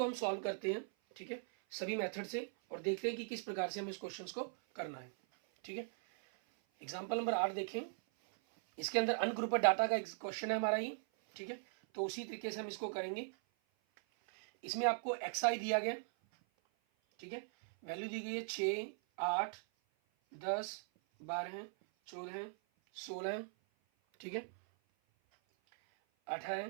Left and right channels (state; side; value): silent; left; 51 dB below the other